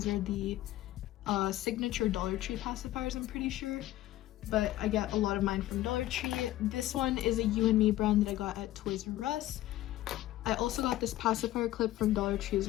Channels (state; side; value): quieter; right; 15.2 dB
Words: are the signature Dollar Tree pacifiers, I'm pretty sure. But I get a lot of mine from Dollar Tree. This one is a You and Me brand that I got at Toys R Us. I also got this pacifier clip from Dollar Tree as